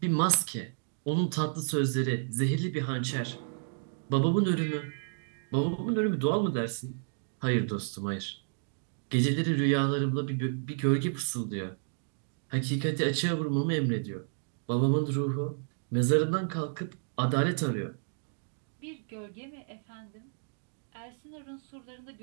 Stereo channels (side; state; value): left; silent; digital silence